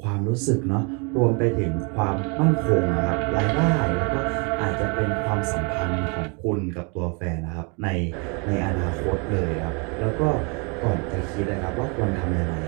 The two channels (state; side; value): quieter; left; 33.5 dB